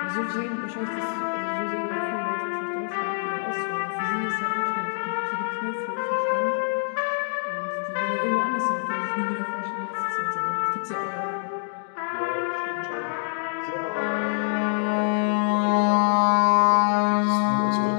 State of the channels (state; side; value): silent; right; digital silence